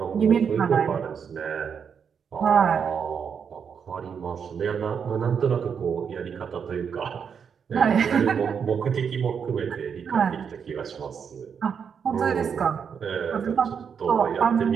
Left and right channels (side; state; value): left; quieter; 6.9 dB